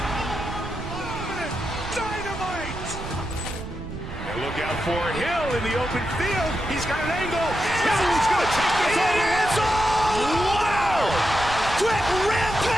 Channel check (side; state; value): right; noise; rumble, 10 dB below the sound